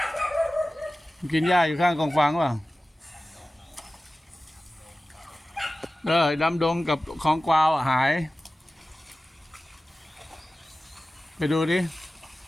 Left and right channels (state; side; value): normal; both; correlation 0.96